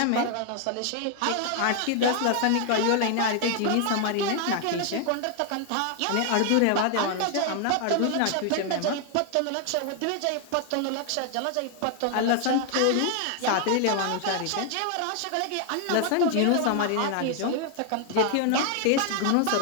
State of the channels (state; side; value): different; both; correlation 0.00